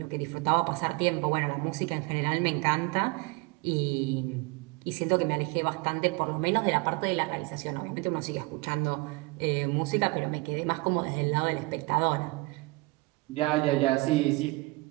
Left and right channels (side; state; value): left; quieter; 25.1 dB